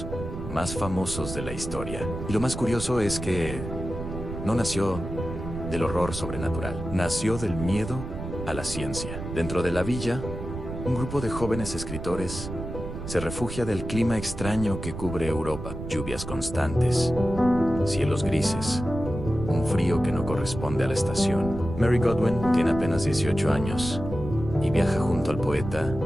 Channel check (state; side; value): noise; right; rumble, 8 dB below the sound